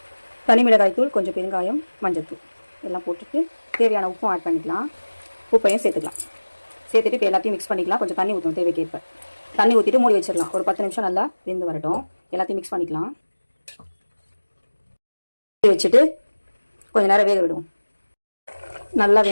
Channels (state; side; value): inverted; both; correlation -1.00